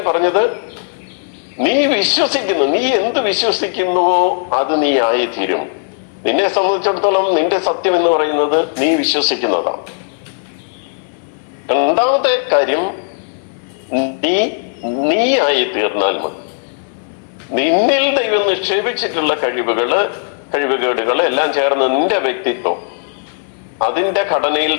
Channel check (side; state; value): right; silent; 63 dB below the other